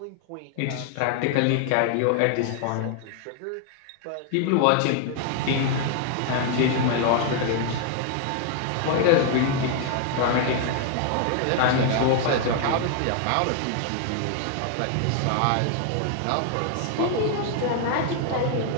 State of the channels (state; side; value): different; both; correlation 0.00